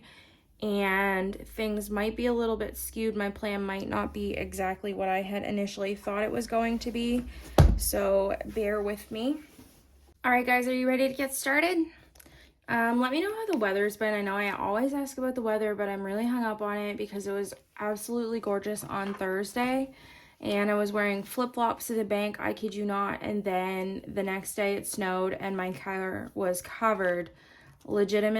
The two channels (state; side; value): identical; both; correlation 1.00